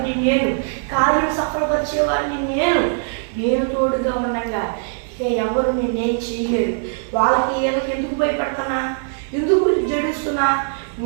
నేను కార్యం సఫలపరిచేవాడిని, నేను తోడుగా ఉండగా ఇక ఎవరు నేనేం చేయలేరు. వాళ్ళకి ఏదోకి ఎందుకు భయపడుతున్నా, ఎందుకు జడుస్తున్నా?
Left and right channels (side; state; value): left; silent; digital silence